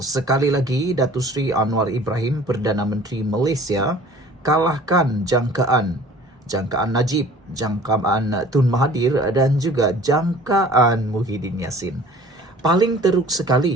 Sekali lagi, Datuk Seri Anwar Ibrahim, Perdana Menteri Malaysia, kalahkan jangkaan Najib, jangkaan Tun Mahathir dan juga jangkaan Muhyiddin Yassin. Paling teruk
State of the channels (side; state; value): both; normal; correlation 0.48